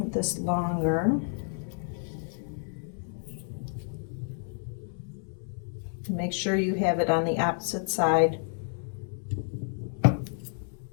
this longer. Make sure you have it on the opposite side. And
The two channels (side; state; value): right; silent; 58 dB below the other